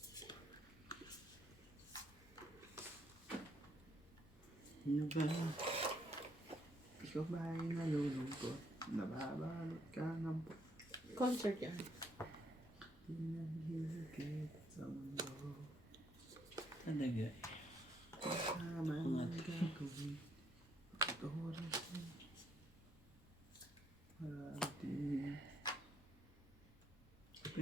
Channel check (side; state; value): both; normal; correlation 0.71